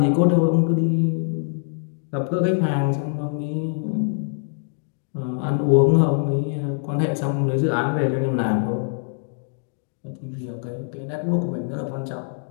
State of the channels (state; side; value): silent; right; digital silence